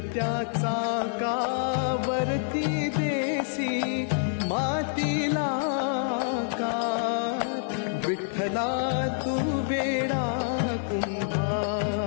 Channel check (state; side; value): silent; right; digital silence